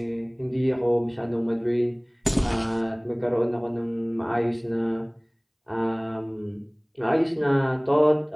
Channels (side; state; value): both; identical; correlation 1.00